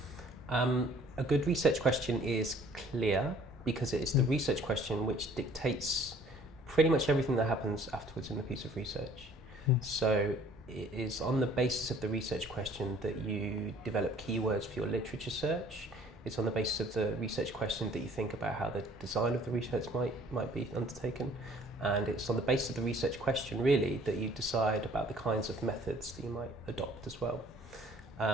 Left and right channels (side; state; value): both; normal; correlation 0.55